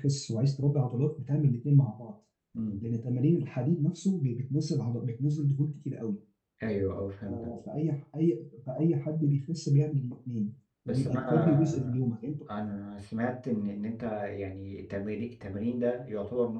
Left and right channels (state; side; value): identical; both; correlation 1.00